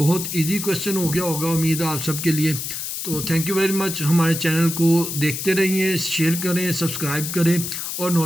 इजी क्वेश्चन हो गया होगा, उम्मीद है आप सब के लिए। तो थैंक यू वेरी मच। हमारे चैनल को देखते रहिए, शेयर करें, सब्सक्राइब करें और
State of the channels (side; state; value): left; noise; hiss, 5 dB below the sound